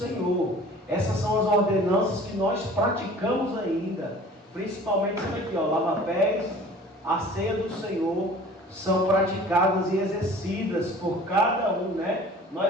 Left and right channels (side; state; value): both; normal; correlation 0.46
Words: Essas são as ordenanças que nós praticamos ainda, principalmente isso aqui, ó, lava-pés, a ceia do Senhor, são praticadas e exercidas por cada um, né?